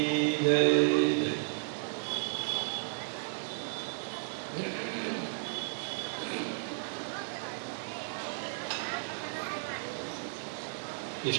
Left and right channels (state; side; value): silent; left; digital silence